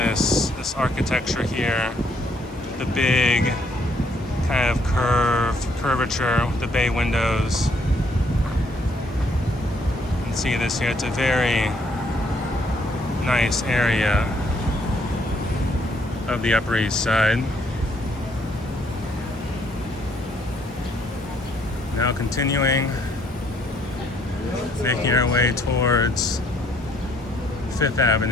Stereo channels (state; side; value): normal; both; correlation 0.68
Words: architecture here, the big kind of curvature with the bay windows. You can see this here. It's a very nice area of the Upper East Side. Now continuing, making our way towards Fifth